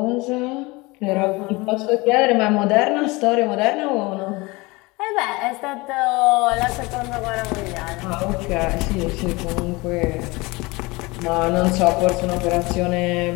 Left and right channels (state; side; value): quieter; right; 23.7 dB